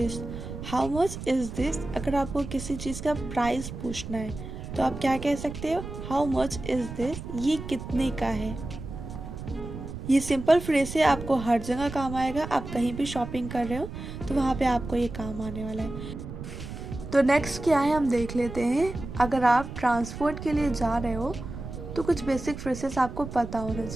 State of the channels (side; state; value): right; noise; rumble, 9 dB below the sound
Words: how much is this. अगर आपको किसी चीज़ का प्राइस पूछना है तो आप क्या कह सकते हो, हाउ मच इज़ दिस, ये कितने का है। ये सिंपल फ्रेज से आपको हर जगह काम आएगा। आप कहीं भी शॉपिंग कर रहे हो तो वहाँ पे आपको ये काम आने वाला है। तो नेक्स्ट क्या है हम देख लेते हैं, अगर आप ट्रांसपोर्ट के लिए जा रहे हो तो कुछ बेसिक फ्रेजेस आपको पता होना